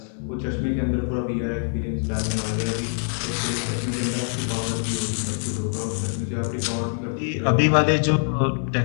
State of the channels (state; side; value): silent; right; digital silence